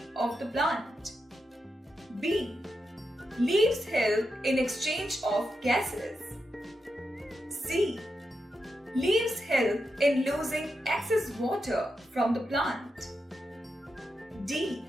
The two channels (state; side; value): normal; both; correlation 0.87